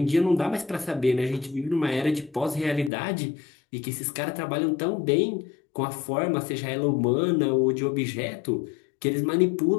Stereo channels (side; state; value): right; drops out; at 2.9 s